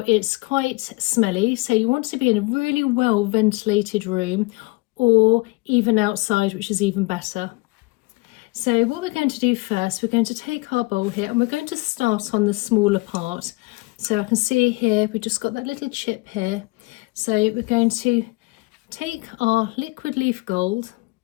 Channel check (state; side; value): quieter; right; 25.6 dB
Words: it's quite smelly, so you want to be in a really well ventilated room or even outside, which is even better. So what we're going to do first, we're going to take our bowl here and we're going to start on the smaller part. So I can see here, we've just got that little chip here. So we're going to take our liquid leaf gold.